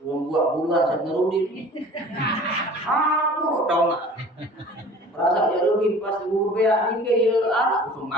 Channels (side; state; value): both; normal; correlation 0.44